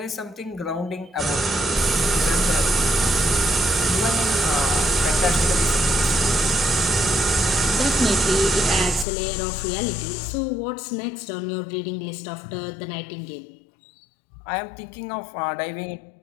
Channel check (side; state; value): right; drops out; at 9.1 s